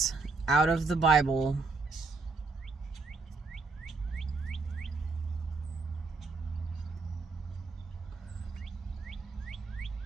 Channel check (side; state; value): left; quieter; 3.9 dB